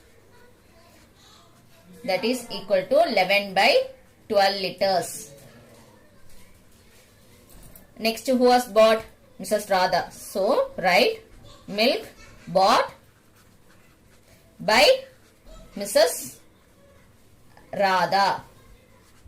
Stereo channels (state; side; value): identical; both; correlation 1.00